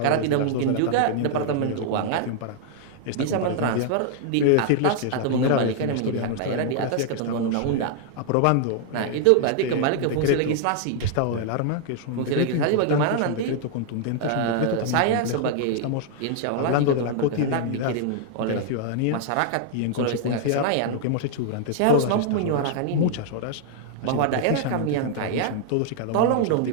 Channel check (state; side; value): different; both; correlation 0.00